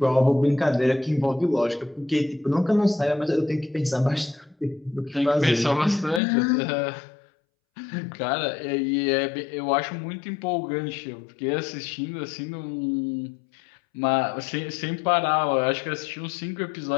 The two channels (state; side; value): drops out; right; at 6.2 s